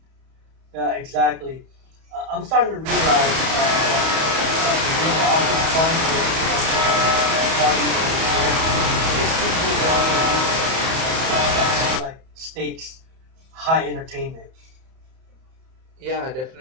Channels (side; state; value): left; late; 31 ms